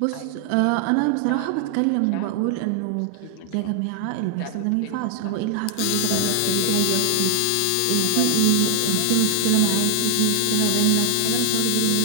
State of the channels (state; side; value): different; both; correlation 0.00